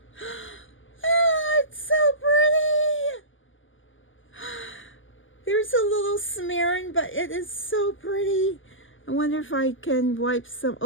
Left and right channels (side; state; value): right; late; 0.58 ms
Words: Oh, it's so pretty. There's a little smearing, but it is so pretty. I wonder if I can wipe some.